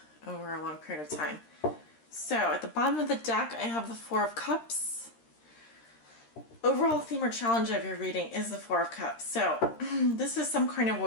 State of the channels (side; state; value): right; late; 13 ms